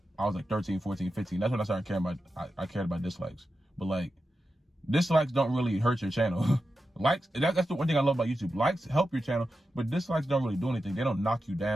I was like 13, 14, 15. That's when I started caring about, I cared about dislikes. But like, dislikes don't really hurt your channel. Likes, that's the one thing I love about YouTube. Likes help your channel, but dislikes don't really do anything. They don't knock you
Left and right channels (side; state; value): both; normal; correlation 0.90